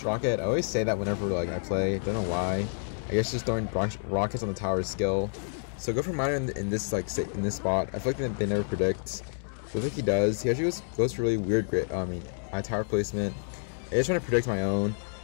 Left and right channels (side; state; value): right; silent; digital silence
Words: rocket. I always say that whenever like I play. Don't know why. I guess just throwing rockets on the tower is skill. So go for miner in this like in this spot. I feel like they never predict. So I think he does. He actually goes for really weird I Tower placement. I just trying to predict my own,